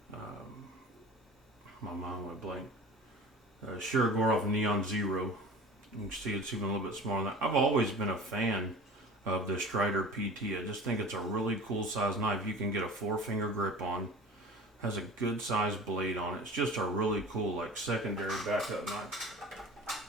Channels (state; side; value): normal; both; correlation 0.39